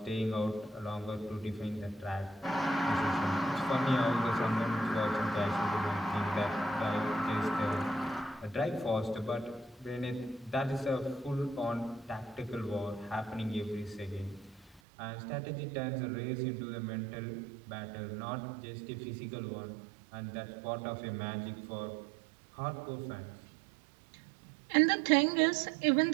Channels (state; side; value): drops out; left; at 14.8 s